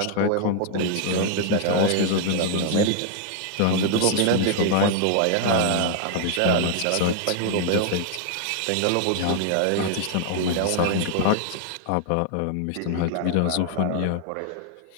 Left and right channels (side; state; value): both; different; correlation 0.00